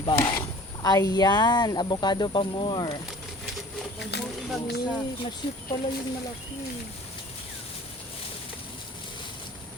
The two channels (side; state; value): both; normal; correlation 0.46